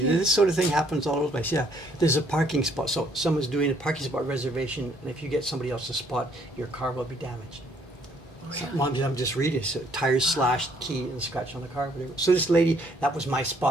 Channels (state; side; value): normal; both; correlation 0.65